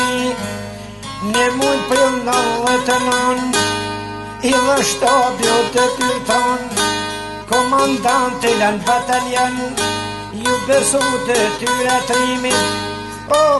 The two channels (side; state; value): both; identical; correlation 1.00